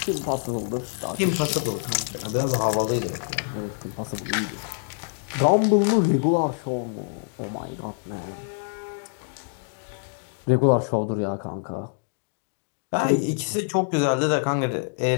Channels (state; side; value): silent; right; digital silence